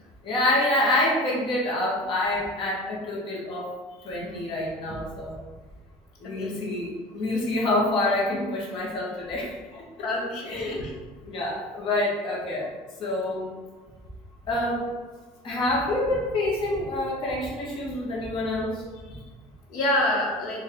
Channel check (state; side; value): normal; both; correlation 0.36